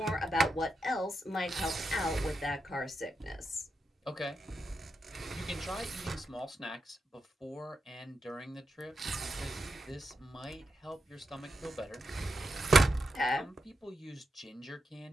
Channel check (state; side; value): normal; both; correlation 0.86